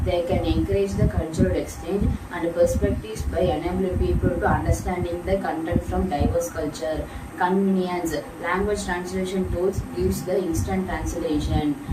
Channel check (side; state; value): both; identical; correlation 1.00